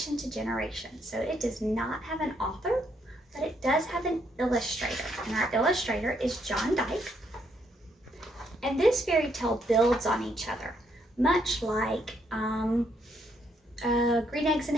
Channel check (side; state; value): both; normal; correlation 0.73